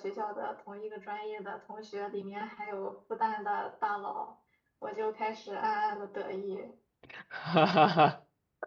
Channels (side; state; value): both; identical; correlation 1.00